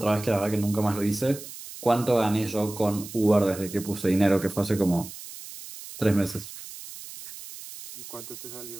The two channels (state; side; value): noise; right; hiss, 13 dB below the sound